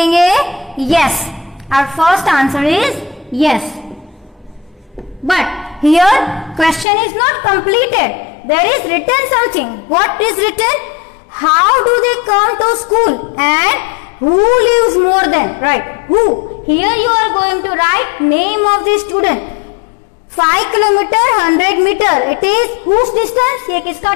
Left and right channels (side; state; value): right; drops out; at 6.9 s